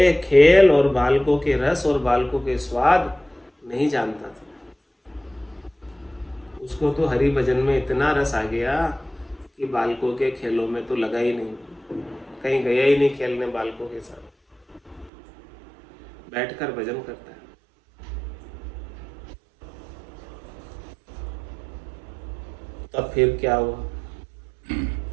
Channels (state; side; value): drops out; left; at 15.1 s